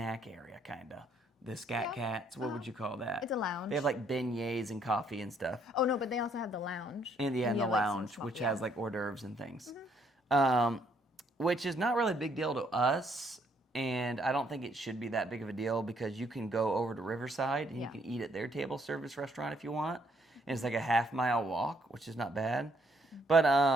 area kind of. The Scat Cats, what would you call that? It's a lounge. They have like beignets and coffee and stuff. Oh no, but they also have the lounge. And the lounge, which has like hors d'oeuvres and things. Which is not really a big deal to us. And I don't think it should be that big of a deal because you can go over to Riverside and you can eat at their table service restaurant if you want. And it's like a half-mile walk, which is not bad. But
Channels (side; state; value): both; normal; correlation 0.69